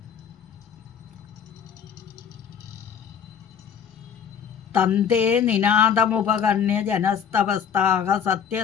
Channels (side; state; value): right; quieter; 7.8 dB